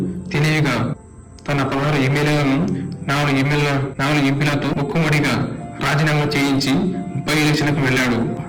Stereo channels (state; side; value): identical; both; correlation 1.00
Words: తెలివిగా తన 16 ఎమ్మెల్యేలను 4 ఎంపీలతో ముక్కుమడిగా రాజీనామా చేయించి బై ఎలక్షన్లకు వెళ్లాడు.